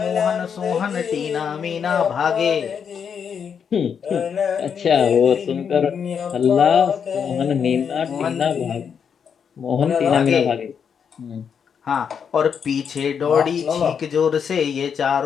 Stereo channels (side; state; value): right; quieter; 7.1 dB